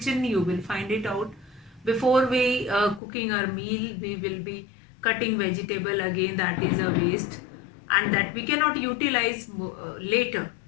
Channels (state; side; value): drops out; right; at 3.0 s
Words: you will find it out. Before we cooking our meal, we will be cutting vegetable, again that is a waste and that we cannot utilize later.